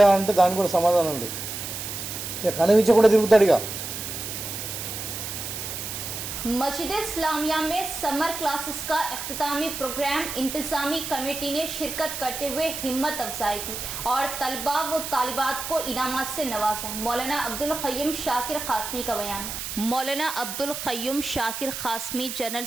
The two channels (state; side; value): noise; right; hiss, 6 dB below the sound